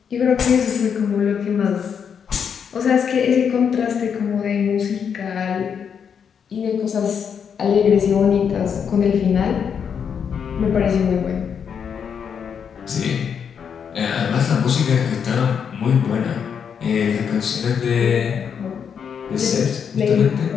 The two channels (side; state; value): right; quieter; 7.3 dB